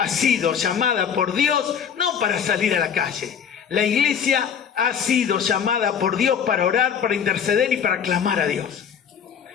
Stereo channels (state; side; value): quieter; right; 7.6 dB